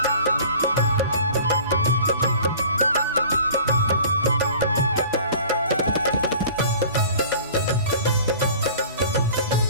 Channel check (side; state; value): both; inverted; correlation -0.45